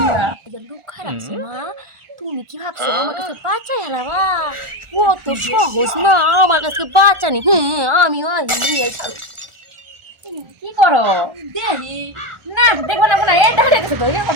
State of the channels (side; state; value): left; late; 1.4 ms